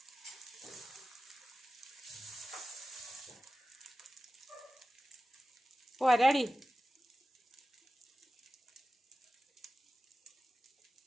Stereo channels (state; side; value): normal; both; correlation 0.95